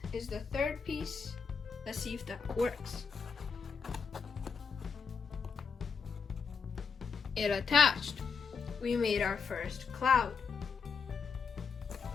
is the third piece. Let's see if that works. It attached. We made our first cloud.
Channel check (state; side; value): quieter; right; 5.7 dB